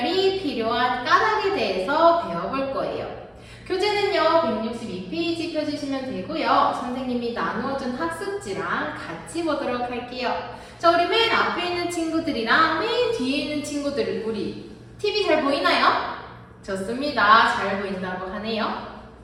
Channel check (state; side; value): identical; both; correlation 1.00